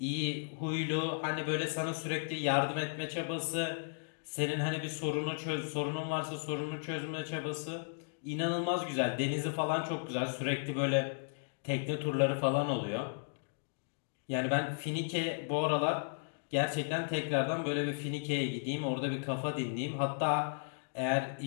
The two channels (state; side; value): silent; right; digital silence